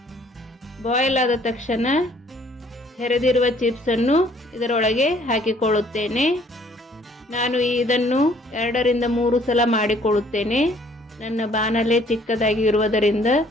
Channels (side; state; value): both; normal; correlation 0.60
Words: ಬಾಯ್ಲ್ ಆದ ತಕ್ಷಣ ಹೆರೆದಿರುವ ಚಿಪ್ಸನ್ನು ಇದರೊಳಗೆ ಹಾಕಿಕೊಳ್ಳುತ್ತೇನೆ. ನಾನು ಇದನ್ನು 2 ರಿಂದ 3 ಸಲ ಮಾಡಿಕೊಳ್ಳುತ್ತೇನೆ. ನನ್ನ ಬಾಣಲೆ ಚಿಕ್ಕದಾಗಿ ಇರುವುದರಿಂದ